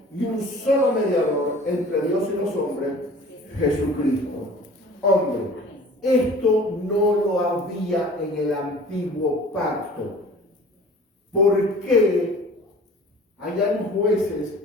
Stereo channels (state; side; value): normal; both; correlation 0.45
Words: y un solo mediador entre Dios y los hombres, Jesucristo. Hombre, esto no lo había en el antiguo pacto. ¿Por qué allá en Jueces